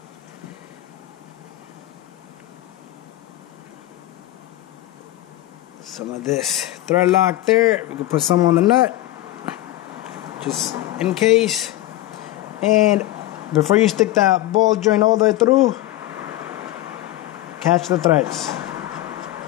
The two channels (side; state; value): right; quieter; 15.4 dB